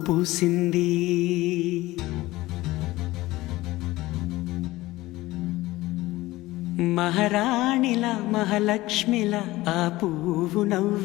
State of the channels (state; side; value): quieter; right; 18.3 dB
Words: పూసింది. మహారాణిలా మహాలక్ష్మిలా ఆ పువ్వు